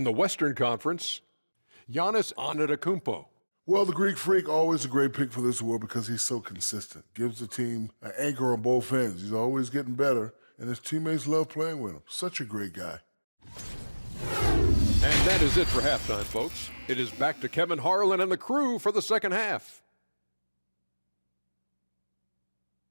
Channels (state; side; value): inverted; both; correlation -1.00